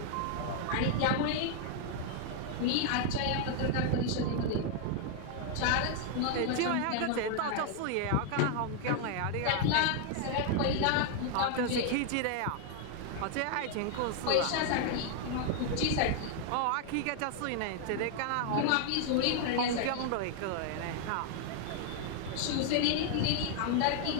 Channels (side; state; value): both; different; correlation 0.00